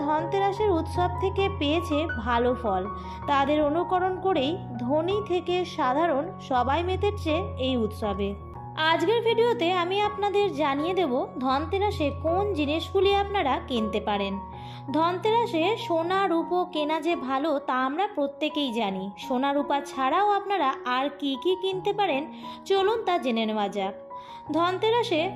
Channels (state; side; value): identical; both; correlation 1.00